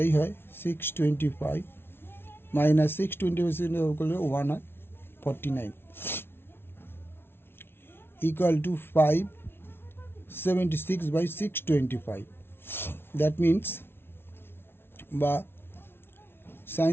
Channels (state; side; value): late; right; 0.11 ms